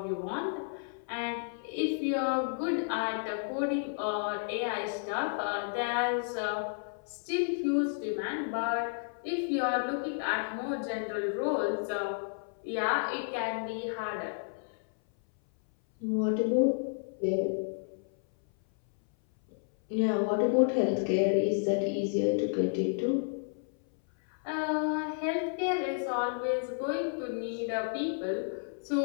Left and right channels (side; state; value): right; silent; 57 dB below the other